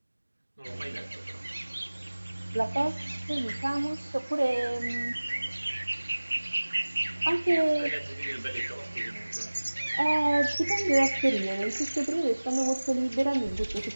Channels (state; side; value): inverted; both; correlation -1.00